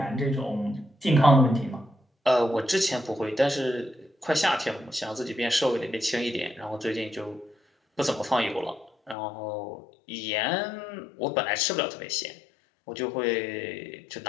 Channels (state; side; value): drops out; right; at 9.2 s